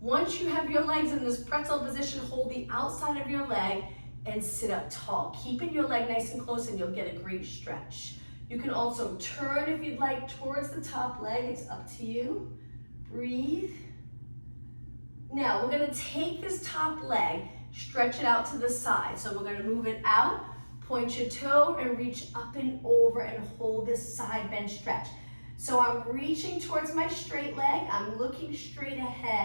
you have your legs in this pretzel position, hold the outside of your leg and sit up tall. Keeping your leg nice and close and you'll get a great stretch. You can also turn if you'd like towards the top leg. It's up to you. Breathe. Now we're gonna take this top leg, stretch it out to the side. So we're gonna move it out, point your toe and reach up and over and hold this side bend stretch. So I'm reaching towards my straight leg. I'm looking straight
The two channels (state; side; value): inverted; both; correlation -1.00